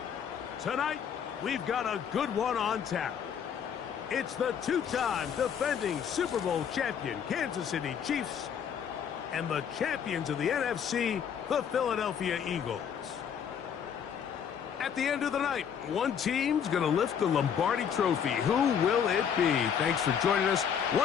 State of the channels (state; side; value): quieter; right; 7.9 dB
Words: Tonight, we've got a good one on tap. It's the two-time defending Super Bowl champion Kansas City Chiefs and the champions of the NFC, the Philadelphia Eagles. At the end of the night, one team's going to lift the Lombardi Trophy. Who will it be? Thanks for joining us